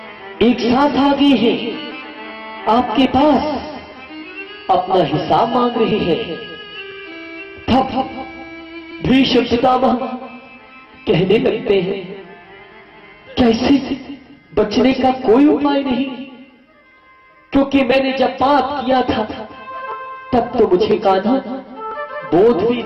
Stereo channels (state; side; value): identical; both; correlation 1.00